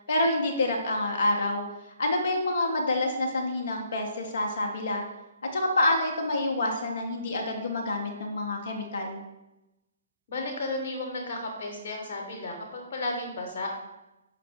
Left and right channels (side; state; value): both; inverted; correlation -0.70